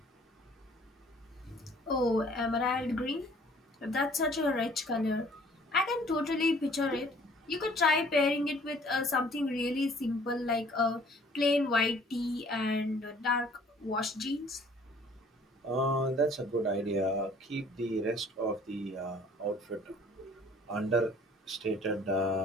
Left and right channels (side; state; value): both; normal; correlation 0.55